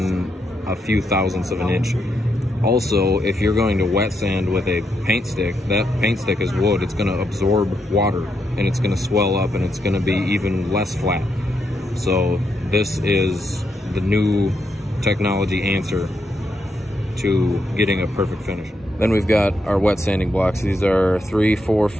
a few thousandths of an inch. Also, if you're going to wet sand with a paint stick, that paint stick is wood. It's going to absorb water and it's going to swell up and it's going to be even less flat. So this is the new technology answer to getting a perfect finish. Then we've got our wet sanding blocks. These are 3, 4,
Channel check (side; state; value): both; normal; correlation 0.81